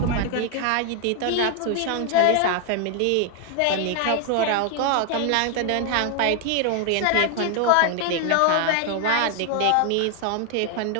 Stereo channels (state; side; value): different; both; correlation 0.00